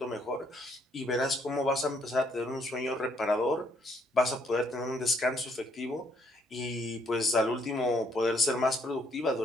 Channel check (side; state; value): both; normal; correlation 0.68